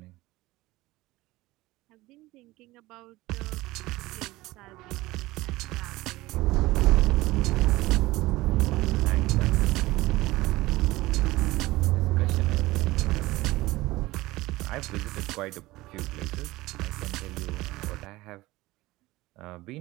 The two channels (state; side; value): quieter; left; 19.1 dB